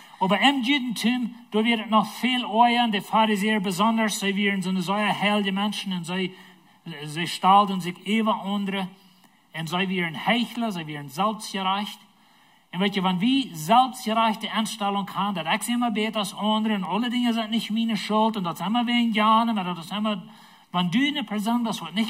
Aber im Judentum, da wird es noch viel euer, die Pharisäer besonders, sie wären so eine solche heilige Menschen und sie stalten sich über andere und sie wären Heuchler, sie wären selbstgerecht. Und weet je, wenn wir selbstgerechte Einstellung haben, dass ich immer besser als andere und alle Dinge sind nicht meine Schuld und das ist immer wegen Jahre, aber das ist immer, wenn du eine Person bist, die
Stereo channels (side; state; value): both; identical; correlation 1.00